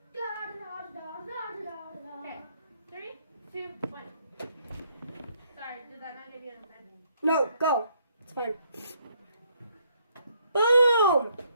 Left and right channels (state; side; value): inverted; both; correlation -0.70